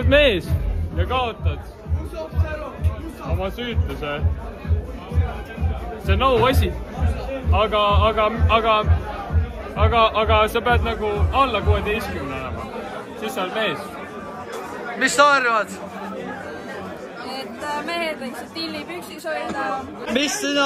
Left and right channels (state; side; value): identical; both; correlation 1.00